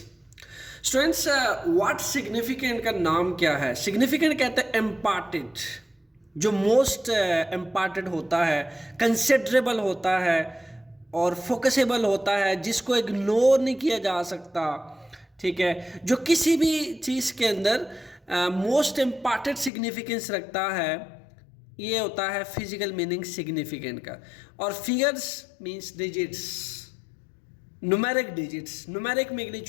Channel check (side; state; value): right; drops out; at 19.7 s